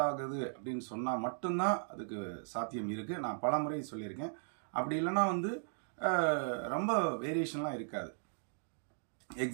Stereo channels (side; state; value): left; silent; digital silence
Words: ஆகுது அப்படின்னு சொன்னால் மட்டும்தான் அதுக்கு சாத்தியம் இருக்குது. நான் பல முறை சொல்லியிருக்கேன். அப்படி இல்லைன்னா வந்து ரொம்ப வேரியேஷன்லாம் இருக்காது.